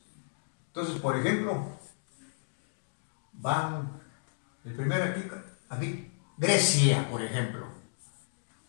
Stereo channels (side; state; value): right; silent; digital silence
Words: Entonces, por ejemplo, van, el primero aquí, Grecia, por ejemplo.